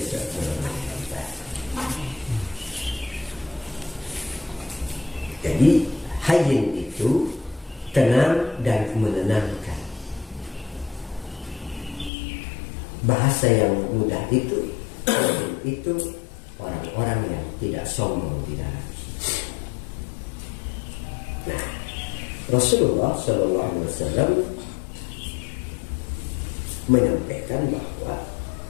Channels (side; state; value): right; drops out; at 12.1 s